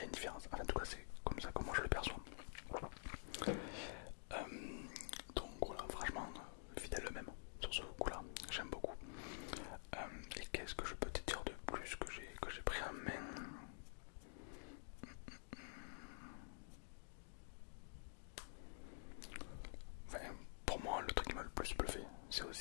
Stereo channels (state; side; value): silent; right; digital silence